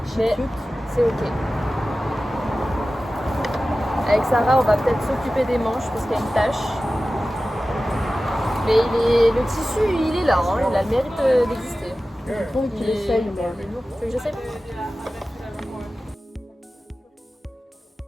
Mais Cute. c'est ok. Avec Sarah, on va peut-être s'occuper des manches parce qu'il y a une tache. Mais le tissu, il est là, hein. Il a le mérite d'exister. Je trouve qu'il essaye, mais. Tu veux que j'essaie?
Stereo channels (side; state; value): both; normal; correlation 0.95